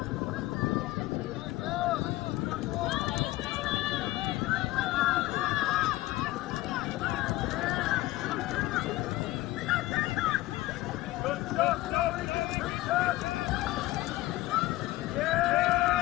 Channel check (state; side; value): quieter; right; 17.6 dB